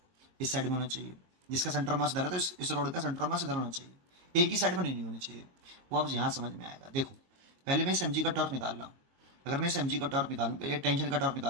इस साइड में होना चाहिए, जिसका सेंटर ऑफ मास इधर है तो इस रोड का सेंटर ऑफ मास इधर होना चाहिए, एक ही साइड में नहीं होना चाहिए। वो अब यहाँ समझ में आएगा। देखो पहले मैं इस mg का टॉर्क निकाल रहा हूँ, अगर मैं इस mg का टॉर्क निकालूं, पहले टेंशन का टॉर्क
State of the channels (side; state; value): left; late; 22 ms